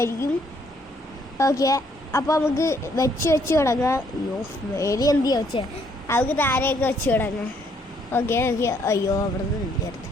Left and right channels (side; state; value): both; normal; correlation 0.68